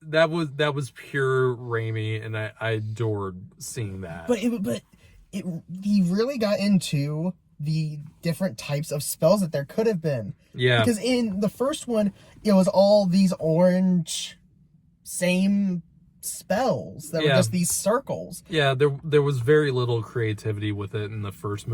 that was pure Raimi, and I adored seeing that. But he really got into the different types of spells that there could have been. Yeah. Because in the first one, it was all these orange same spells that were just these circles. Yeah, there was very little creativity with it in the first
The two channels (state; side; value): identical; both; correlation 1.00